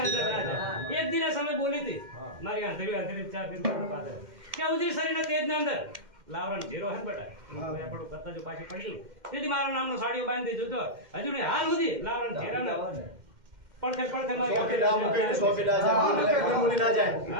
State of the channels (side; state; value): left; late; 2.1 ms